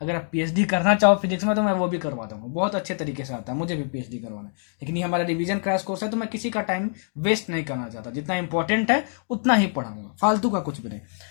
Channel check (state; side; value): silent; right; digital silence